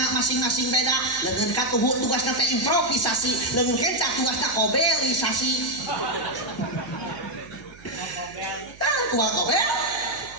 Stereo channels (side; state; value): right; noise; hum, 22 dB below the sound